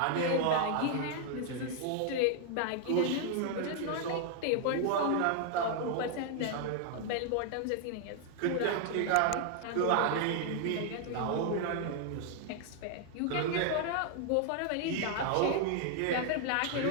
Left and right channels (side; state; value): both; different; correlation 0.00